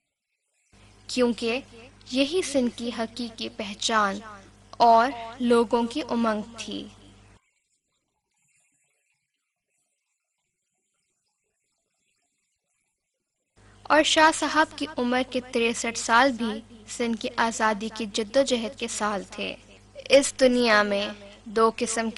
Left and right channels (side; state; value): both; identical; correlation 1.00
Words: کیونکہ یہی سندھ کی حقیقی پہچان اور لوگوں کی امنگ تھی۔ اور شاہ صاحب کی عمر کے 63 سال بھی سندھ کی آزادی کی جدوجہد کے سال تھے۔ اس دنیا میں دو قسم